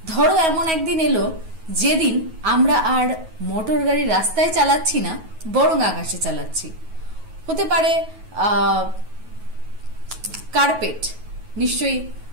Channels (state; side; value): late; left; 9.3 ms